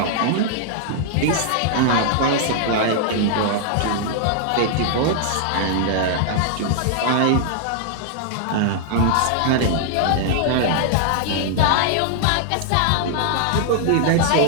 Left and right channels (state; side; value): different; both; correlation -0.01